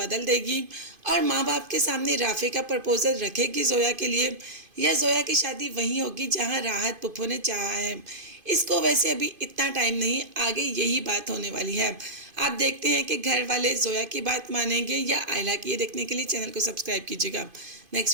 देगी और माँ बाप के सामने राफे का प्रपोजल रखेगी जोया के लिए, या जोया की शादी वहीं होगी जहाँ राहत पुप्पो ने चाहा है। इसको वैसे अभी इतना टाइम नहीं, आगे यही बात होने वाली है। आप देखते हैं कि घर वाले जोया की बात मानेंगे या आयला की। ये देखने के लिए चैनल को सब्सक्राइब कीजिएगा।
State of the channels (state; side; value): late; left; 2.5 ms